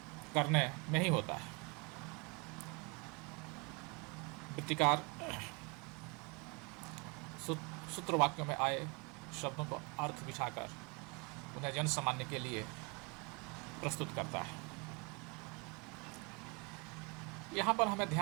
करने में ही होता है। वृत्तिकार सूत्र वाक्यों में आए शब्दों को अर्थ बिठाकर उन्हें जन सामान्य के लिए प्रस्तुत करता है। यहाँ पर हमें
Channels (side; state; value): left; quieter; 31.3 dB